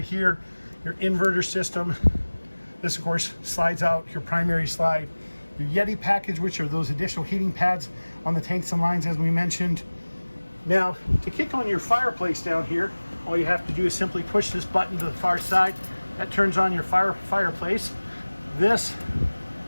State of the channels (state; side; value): inverted; both; correlation -1.00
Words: here, your inverter system. This, of course, slides out your primary slide. Your Yeti package, which are those additional heating pads on the tanks and lines, as we mentioned. Now, to kick on your fireplace down here, all you have to do is simply push this button to the far side. That turns on your fireplace. This